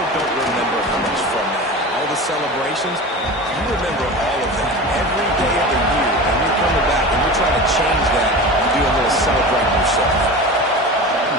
don't remember how much fun they had. All the celebrations, you remember all of that every day of the year, and you're coming back and you're trying to change that. You do a little celebrating yourself.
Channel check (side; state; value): both; normal; correlation 0.31